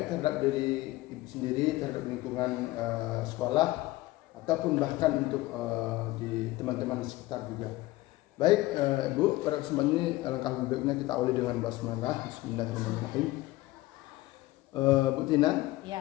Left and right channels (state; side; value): quieter; right; 18.5 dB